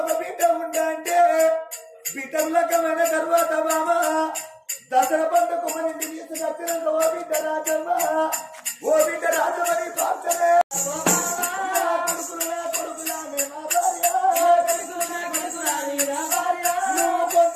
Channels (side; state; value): both; identical; correlation 1.00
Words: ఒక బిడ్డ ఉండంటే బిడ్డ లక్కమైన తర్వాత బాబా దసరా పండుగ మన ఇంటికి తీసుకొచ్చినంత ఓ బిడ్డ రాజమ్మ ఓ బిడ్డ రాజమని పాత్రలే కొడుకులానే నా భార్య కొడుకులాని నా భార్య. నువ్వు